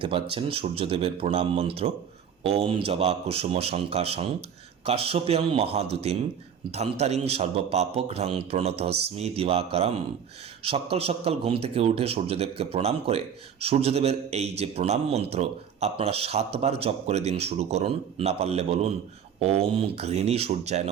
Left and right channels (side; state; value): left; quieter; 8.1 dB